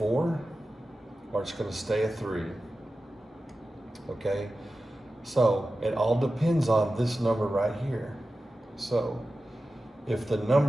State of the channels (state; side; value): normal; both; correlation 0.94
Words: or it's going to stay a 3, okay? So it all depends on this number right here. So if the